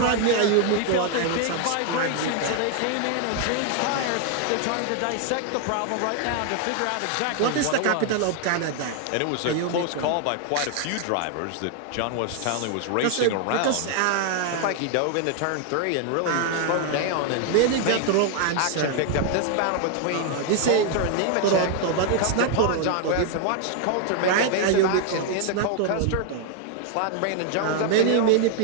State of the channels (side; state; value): both; different; correlation 0.00